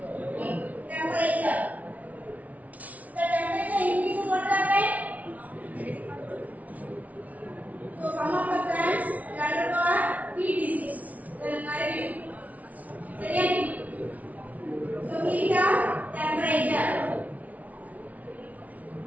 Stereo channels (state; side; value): late; left; 0.071 ms